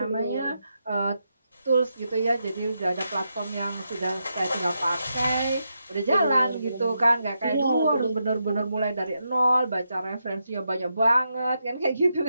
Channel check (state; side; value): inverted; both; correlation -0.84